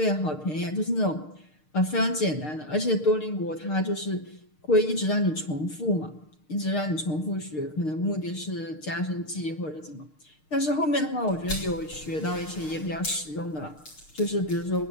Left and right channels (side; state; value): right; late; 6.6 ms